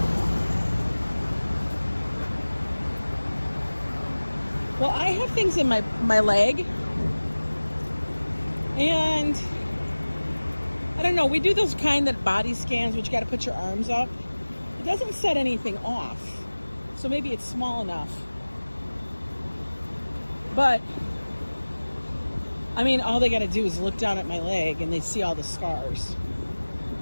Well, I have things in my leg, and I don't know. We do those kind that body scans, which you got to put your arms up. It doesn't set anything off. So maybe it's small enough. But, I mean, all they got to do is look down at my leg and they see all the scars.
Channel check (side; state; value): both; inverted; correlation -1.00